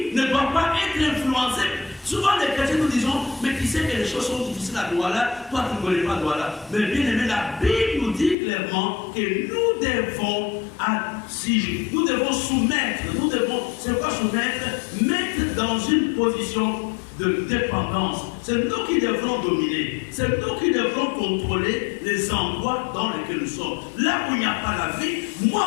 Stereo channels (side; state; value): right; drops out; at 8.3 s